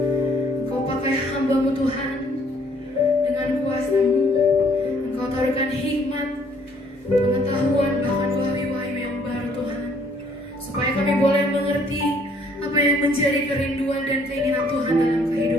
Engkau pakai hamba-Mu Tuhan dengan kuasa-Mu. Engkau taruhkan hikmat, pengetahuan, bahkan wahyu-wahyu yang baru Tuhan, supaya kami boleh mengerti apa yang menjadi kerinduan dan keinginan Tuhan dalam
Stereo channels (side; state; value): both; normal; correlation 0.63